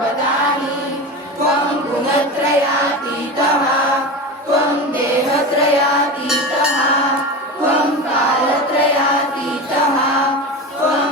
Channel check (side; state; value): both; normal; correlation 0.25